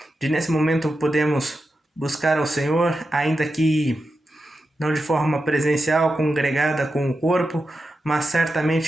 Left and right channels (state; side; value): normal; both; correlation 0.90